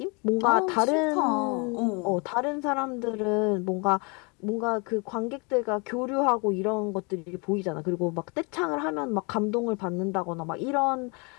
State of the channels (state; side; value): quieter; right; 31.5 dB